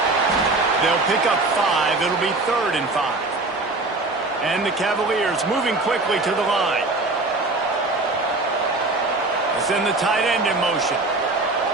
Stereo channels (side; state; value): left; quieter; 3.1 dB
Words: They'll pick up 5. It'll be 3rd and 5. And the Cavaliers moving quickly to the line. Send the tight end in motion.